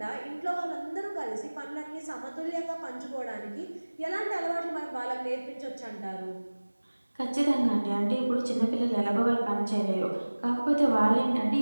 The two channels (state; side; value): inverted; both; correlation -1.00